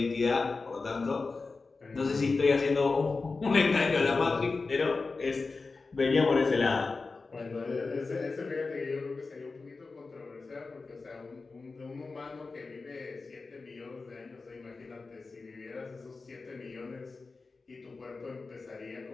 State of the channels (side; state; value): right; quieter; 4.0 dB